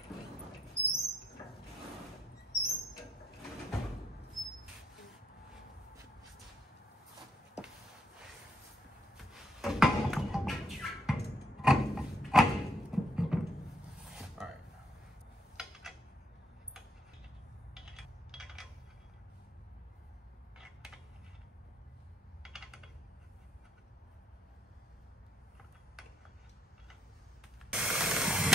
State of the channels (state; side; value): normal; both; correlation 0.71